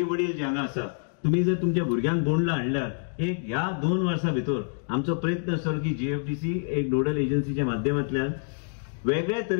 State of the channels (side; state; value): right; silent; digital silence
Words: वडील जे हांगा आसा तुम्ही जर तुमच्या भुरग्यांक बोंडला हाडल्यार एक ह्या 2 वर्सां भितर आमचो प्रयत्न आसतलो की जीएफडीसी एक नोडल एजन्सीच्या माध्यमांतल्यान वेगळ्या